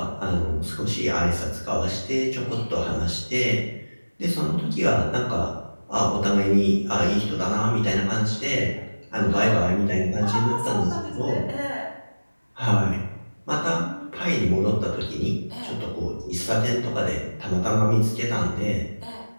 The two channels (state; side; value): inverted; both; correlation -1.00